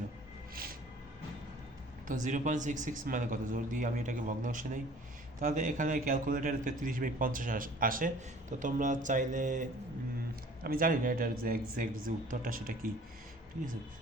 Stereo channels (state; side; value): normal; both; correlation 0.50